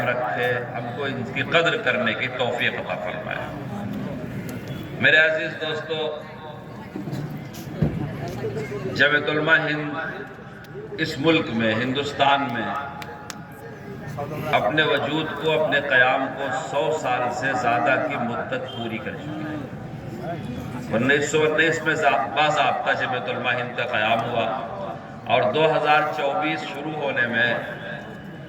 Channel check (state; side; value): identical; both; correlation 1.00